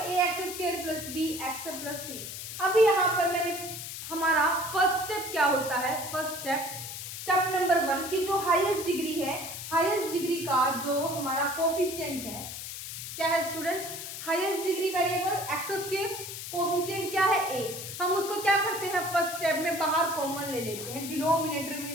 X square plus B X plus C. अभी यहाँ पर मैंने हमारा फर्स्ट स्टेप क्या होता है, फर्स्ट स्टेप नंबर 1 की जो हाईएस्ट डिग्री है, हाईएस्ट डिग्री का जो हमारा कोफिशिएंट है, क्या है student, highest degree variable X square, coefficient क्या है ए। हम उसको क्या करते हैं, फर्स्ट स्टेप में बाहर कॉमन ले लेते हैं डिनोमिनेटर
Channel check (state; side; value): noise; left; hiss, 8 dB below the sound